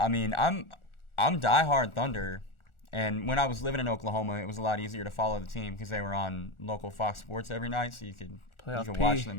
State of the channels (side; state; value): right; late; 1.4 ms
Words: mean, I'm diehard Thunder. And when I was living in Oklahoma, it was a lot easier to follow the team because they were on local Fox Sports every night, so you could watch